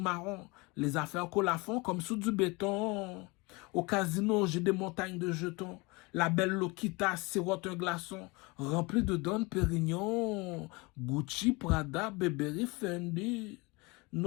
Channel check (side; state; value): right; quieter; 26.1 dB